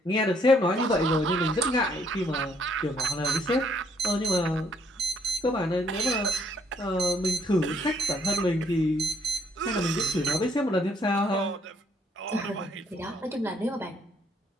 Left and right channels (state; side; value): normal; both; correlation 0.67